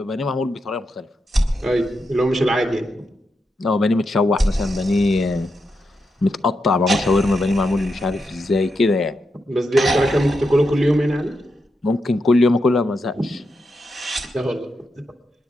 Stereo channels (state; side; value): normal; both; correlation 0.85